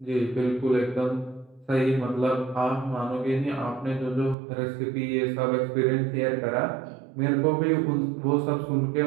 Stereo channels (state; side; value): drops out; left; at 4.4 s